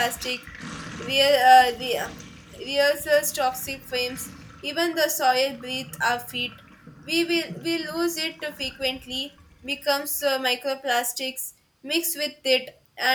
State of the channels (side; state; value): both; identical; correlation 1.00